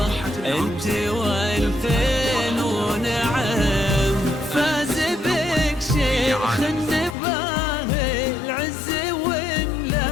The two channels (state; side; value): drops out; right; at 7.2 s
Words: انت والفين ونعم، فاز بك شيخ النباه العز